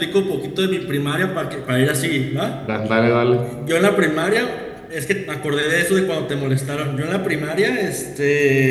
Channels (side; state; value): both; identical; correlation 1.00